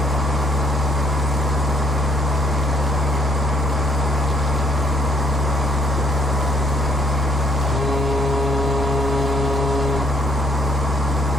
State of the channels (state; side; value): normal; both; correlation 0.66